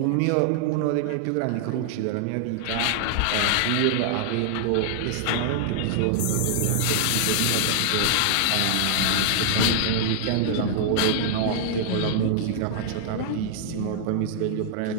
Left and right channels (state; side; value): different; both; correlation -0.01